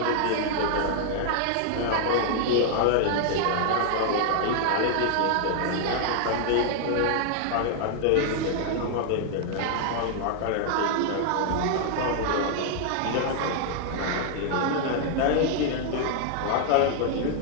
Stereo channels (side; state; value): both; different; correlation 0.00